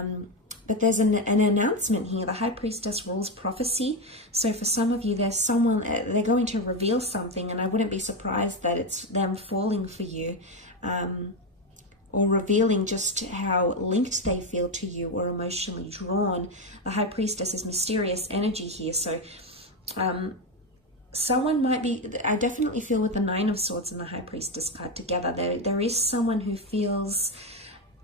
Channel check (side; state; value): both; normal; correlation 0.11